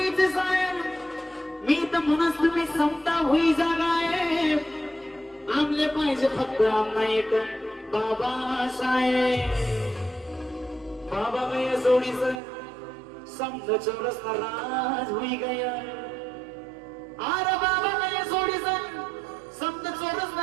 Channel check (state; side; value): drops out; left; at 12.4 s